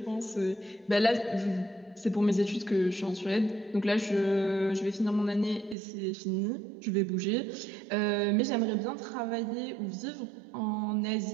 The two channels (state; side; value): drops out; left; at 5.8 s